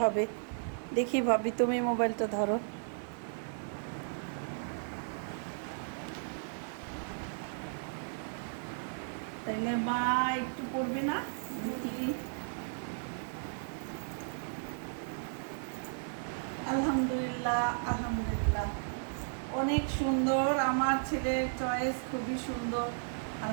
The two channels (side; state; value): left; silent; 55 dB below the other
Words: হবে। দেখি ভাবি, তুমি মোবাইলটা ধরো। তাইলে মা একটু পড়বে না? দেখি। আলহামদুলিল্লাহ, আলহামদুলিল্লাহ। অনেক সুন্দর, আমার ছেলের চয়েস খুবই সুন্দর।